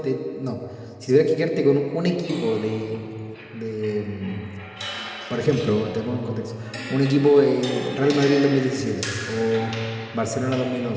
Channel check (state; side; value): identical; both; correlation 1.00